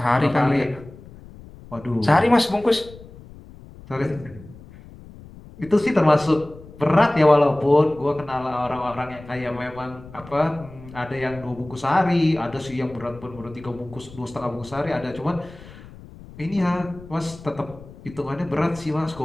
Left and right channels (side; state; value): left; noise; rumble, 19 dB below the sound